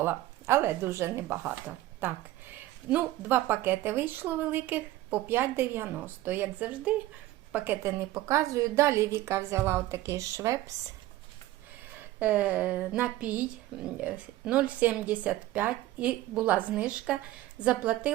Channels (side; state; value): left; quieter; 15.8 dB